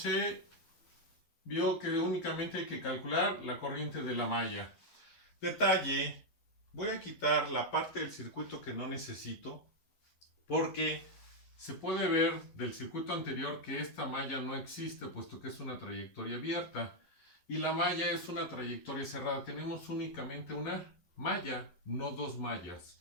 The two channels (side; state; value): right; late; 11 ms